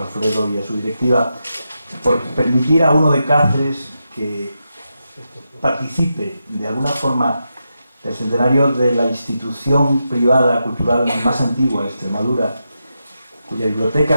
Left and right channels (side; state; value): both; inverted; correlation -0.87